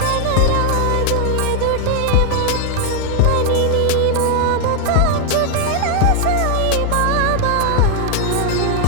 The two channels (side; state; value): both; different; correlation 0.00